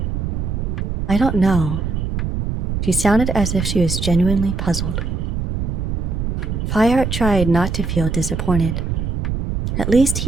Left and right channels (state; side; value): noise; right; rumble, 2 dB below the sound